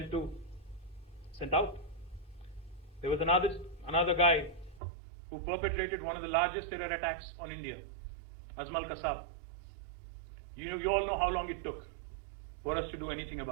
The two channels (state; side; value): drops out; left; at 4.8 s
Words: out. There was another guy who perpetrated one of the largest terror attacks on India, Azmal Kasab. You all know how long it took for us to do anything